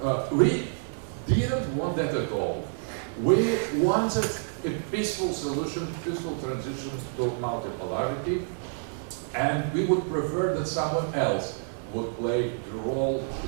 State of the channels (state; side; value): silent; left; 58 dB below the other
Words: We didn't want that at all. We wanted a peaceful solution, peaceful transition to multipolarity, and we would prefer that someone else would play the role